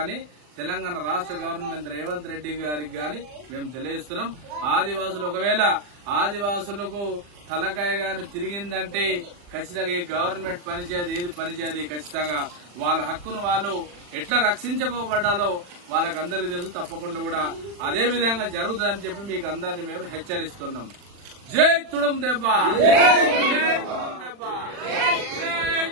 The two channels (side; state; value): left; late; 40 ms